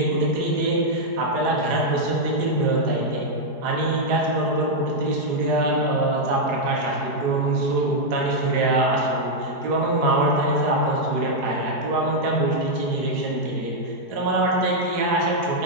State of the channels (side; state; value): left; late; 4.8 ms